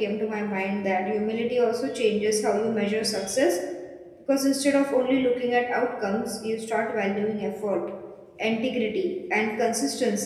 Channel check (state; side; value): identical; both; correlation 1.00